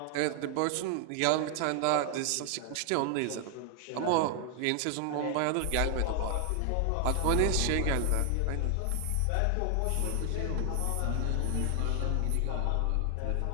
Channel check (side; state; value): both; different; correlation 0.00